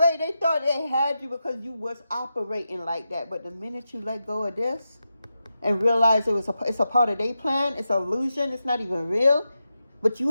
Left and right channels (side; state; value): both; inverted; correlation -0.89